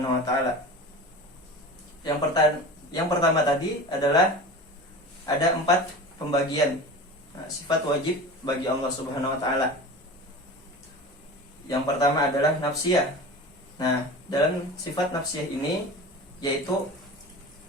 wa taala. Yang pertama tadi adalah ada 4 pembagian sifat wajib bagi Allah Subhanahu wa taala. Yang pertama adalah nafsiyah. Nah, dalam sifat nafsiyah ini yaitu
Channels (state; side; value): normal; both; correlation 0.34